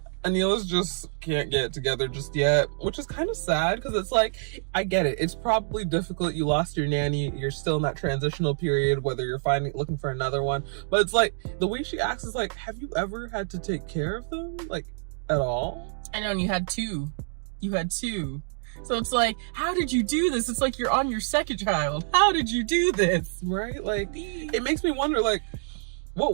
Anila's just can't get it together just yet, which is kind of sad because it's like, I get it. It's probably difficult. You lost your nanny. You're still in that transitional period, whether you're looking for another one. But it's like, the way she acts is like, have you ever had to take care of them? Like, at all? I know, and you had two. So it's like, how did you do this? It's like you're on your second child. How did you do this? Right? Like, it makes me wonder, like,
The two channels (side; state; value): left; silent; 60 dB below the other